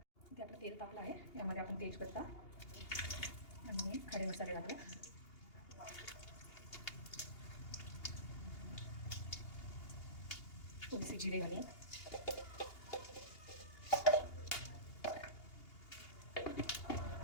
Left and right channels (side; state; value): right; late; 2.8 ms